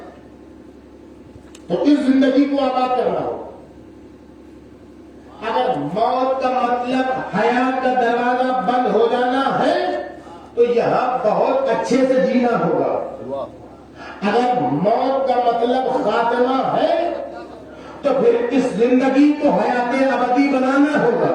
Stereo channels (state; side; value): identical; both; correlation 1.00